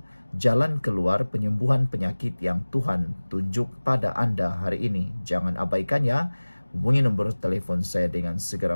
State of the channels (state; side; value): inverted; both; correlation -1.00